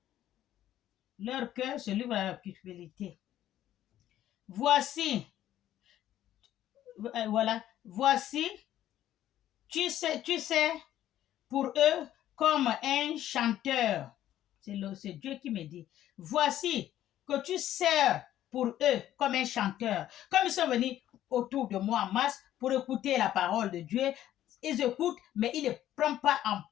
Leur cœur se livre à la cupidité. Voici, voilà, voici, tu sais, pour eux, comme un chanteur. C'est Dieu qui me dit. Voici que tu sers pour eux comme un chanteur. Comme ils sont venus autour de moi en masse pour écouter la parole de Dieu, ils écoutent, mais ils ne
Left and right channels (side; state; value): right; quieter; 12.4 dB